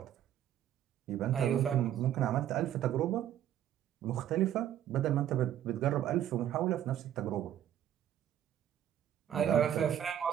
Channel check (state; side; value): quieter; left; 10.9 dB